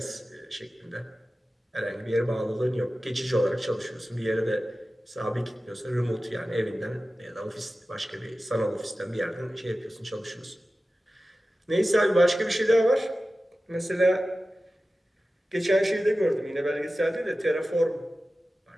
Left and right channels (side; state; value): both; normal; correlation 0.95